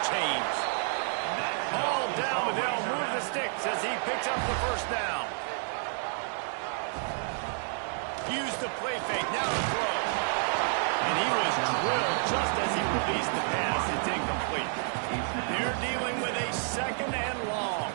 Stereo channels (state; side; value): silent; left; 57 dB below the other